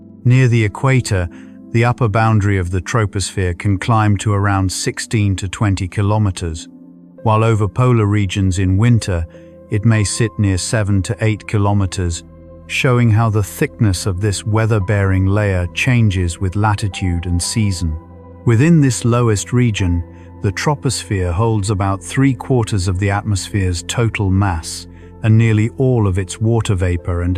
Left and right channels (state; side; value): identical; both; correlation 1.00